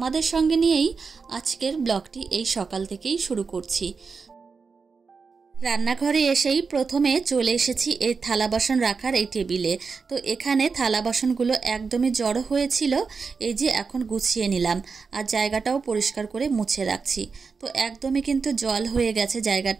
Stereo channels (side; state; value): left; quieter; 5.0 dB